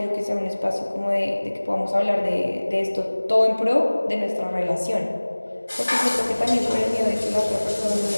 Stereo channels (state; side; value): inverted; both; correlation -1.00